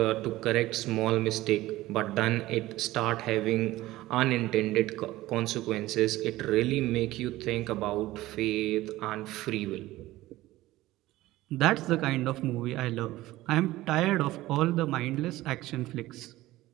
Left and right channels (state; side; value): quieter; left; 17.1 dB